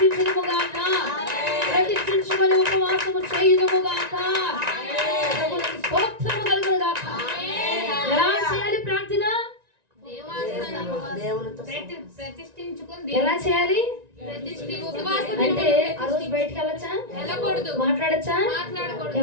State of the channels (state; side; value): late; left; 1.9 ms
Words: ప్రతిష్ఠించుమని ఉపవాసము చేయుదుముగాక. ప్రభువునికి స్తోత్రము కలుగునుగాక. ఎలా చేయాలి ప్రార్థన? ఎలా చేయాలి అంటే ఆ రోజు బయటికి వెళ్ళక మాట్లాడకూడదు. మాట్లాడచ్చా? మాట్లాడకూడదు.